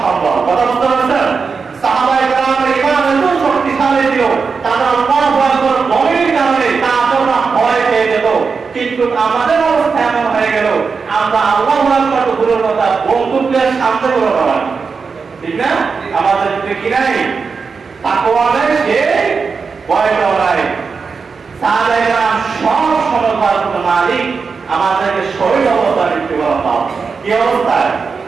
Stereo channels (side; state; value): left; quieter; 5.1 dB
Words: সম্ভব, কথা বুঝতে পারছেন? সাহাবায়ে কেরামের ঈমান এত শক্তিশালী ছিল, তারা আল্লাহু আকবার বলার কারণে কাফেররা ভয় পেয়ে যেত। কিন্তু আমাদের অবস্থা এমন হয়ে গেল, আমরা আল্লাহু আকবার তো দূরের কথা, বন্দুকের সামনে করে দাঁড়াই, ঠিক না? আমাদের ভিতরে কি নাই? তাকওয়া নাই, সে ভয়টাও নাই। সাহাবায়ে কেরাম সব সময় মালিক আমাদেরকে শহীদ অবস্থায় মৃত্যুবরণ দাও। কি অবস্থায়?